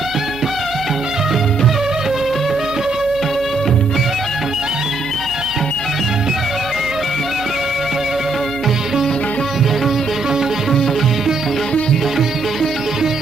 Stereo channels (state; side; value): quieter; left; 3.3 dB